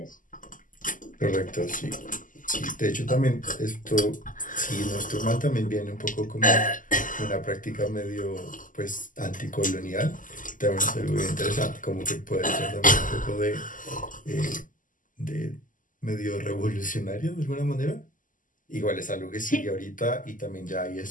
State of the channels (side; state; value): right; late; 0.38 ms